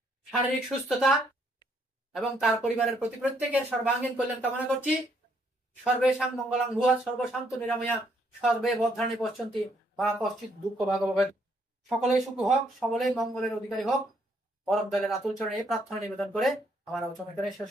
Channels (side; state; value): both; normal; correlation 0.70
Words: শারীরিক সুস্থতা এবং তার পরিবারের প্রত্যেকের সর্বাঙ্গীন কল্যাণ কামনা করছি। সর্বেষাং মঙ্গলাং ভুয়া সর্বশান্ত নিরাময়া সর্বে বদ্ধানি পশ্যন্তি বা কশ্চিৎ দুঃখ ভাগবত। সকলেই সুখ হোক, সকলেই মঙ্গলের অধিকারী হোক, পরম দয়ালের আতুল চরণে এই প্রার্থনা নিবেদন করে আমার আলোচনা করে শেষ